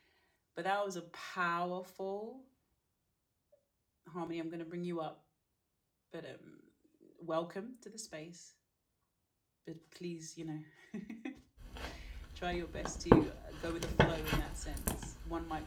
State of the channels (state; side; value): identical; both; correlation 1.00